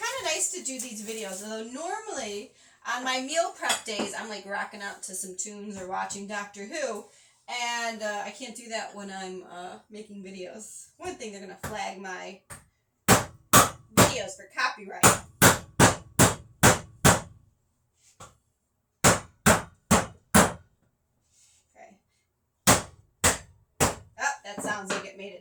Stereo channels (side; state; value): both; identical; correlation 1.00